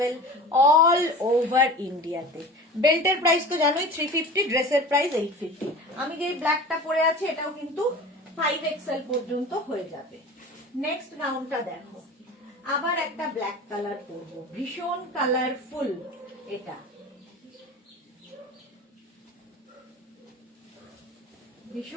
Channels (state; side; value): normal; both; correlation 0.37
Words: all over ইন্ডিয়াতে। বেল্টের প্রাইস তো জানোই 350, ড্রেসের প্রাইস 850। আমি যে ব্ল্যাকটা পরে আছি এটাও কিন্তু 5XL পর্যন্ত হয়ে যাবে। নেক্সট গাউনটা দেখো, আবার একটা ব্ল্যাক কালার পরবো, ভীষণ কালারফুল। এটা